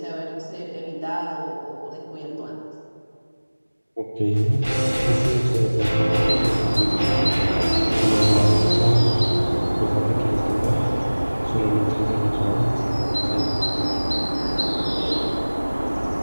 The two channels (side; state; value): both; inverted; correlation -1.00